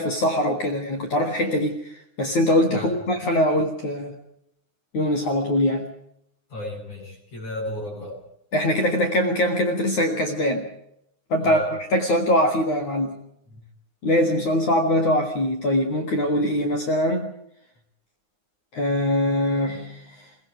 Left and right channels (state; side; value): late; right; 9.7 ms